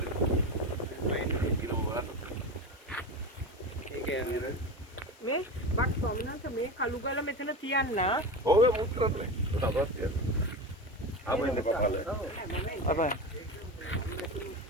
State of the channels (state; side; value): normal; both; correlation 0.24